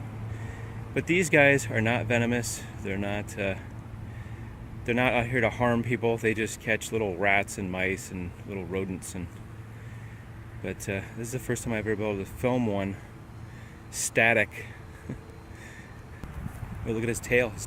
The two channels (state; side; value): identical; both; correlation 1.00